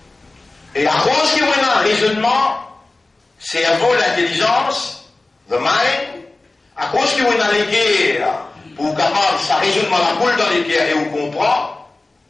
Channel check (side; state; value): right; quieter; 3.2 dB